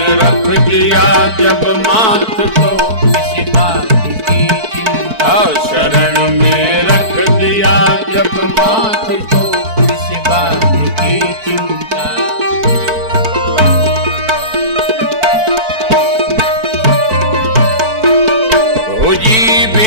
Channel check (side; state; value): left; late; 4.5 ms